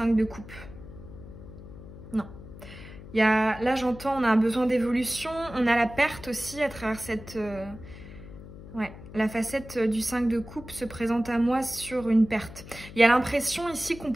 de coupe. Non. Là, j'entends, on a un besoin d'évolution. On a la perte aussi à travers cette... Ouais, la facette du 5 de coupe se présente à moi sur une perte. Il y a l'impression ici qu'on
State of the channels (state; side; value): noise; left; hum, 15 dB below the sound